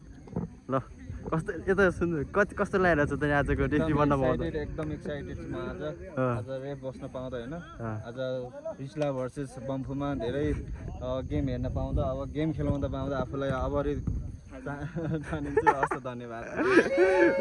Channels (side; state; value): both; identical; correlation 1.00